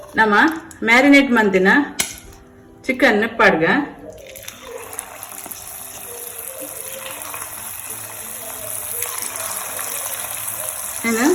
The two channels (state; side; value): identical; both; correlation 1.00